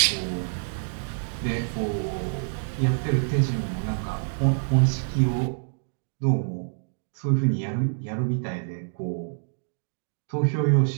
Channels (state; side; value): silent; left; digital silence